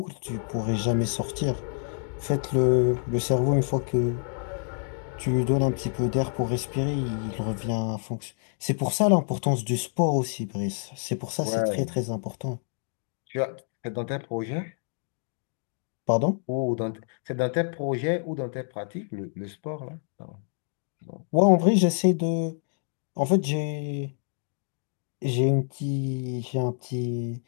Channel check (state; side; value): silent; right; 60 dB below the other